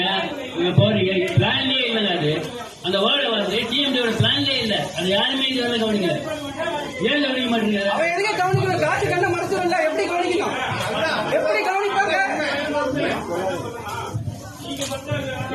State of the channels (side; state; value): both; identical; correlation 1.00